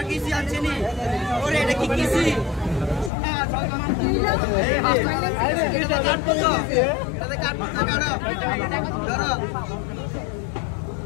किसी अच्छी नहीं और ये देखी किसी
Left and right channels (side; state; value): right; drops out; at 3.1 s